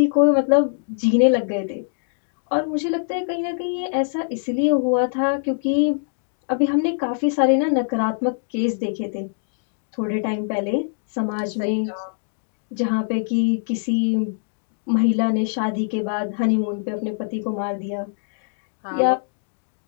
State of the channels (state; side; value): silent; right; digital silence